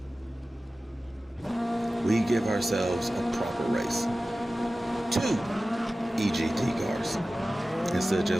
We give ourselves a proper race. 2 EGT cars instead of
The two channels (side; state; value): both; normal; correlation 0.96